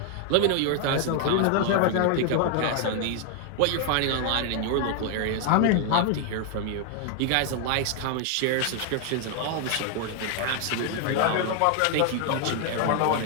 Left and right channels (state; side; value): different; both; correlation 0.00